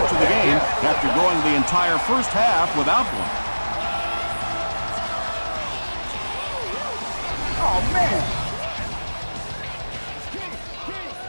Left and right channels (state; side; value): inverted; both; correlation -1.00